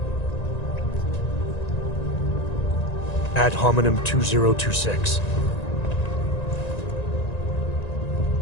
Ad hominem 2026.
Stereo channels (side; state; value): right; late; 1.9 ms